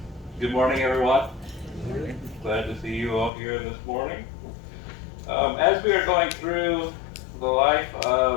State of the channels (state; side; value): drops out; right; at 3.3 s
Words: good morning, everyone. Glad to see you all here this morning. As we are going through the life